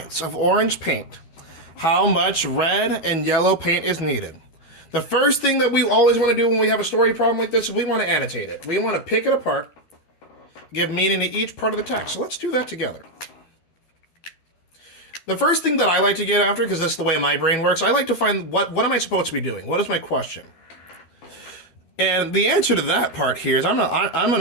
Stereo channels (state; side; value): late; right; 12 ms